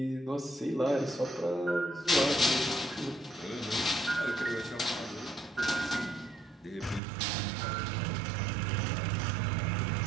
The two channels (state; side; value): drops out; left; at 7.0 s